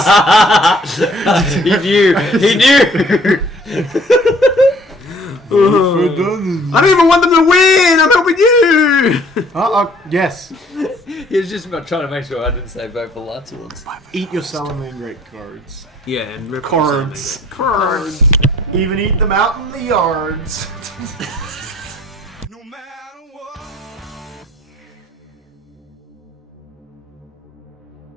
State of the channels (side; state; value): both; normal; correlation 0.58